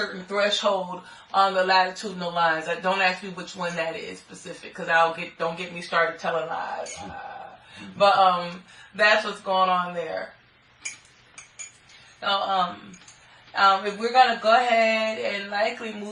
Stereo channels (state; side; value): identical; both; correlation 1.00